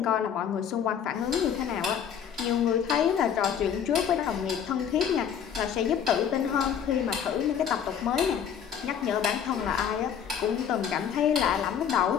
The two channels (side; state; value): right; quieter; 8.3 dB